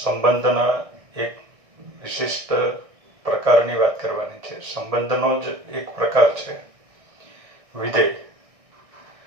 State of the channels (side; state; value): left; late; 1.6 ms